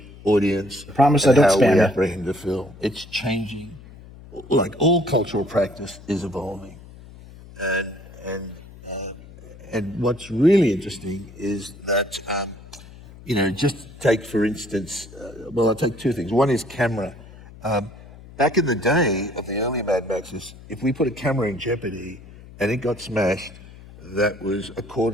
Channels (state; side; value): noise; left; hum, 19 dB below the sound